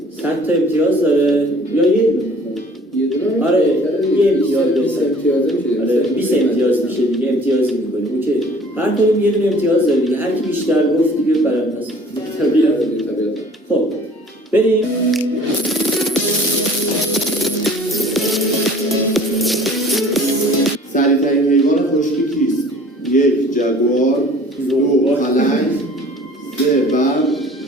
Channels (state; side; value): normal; both; correlation 0.51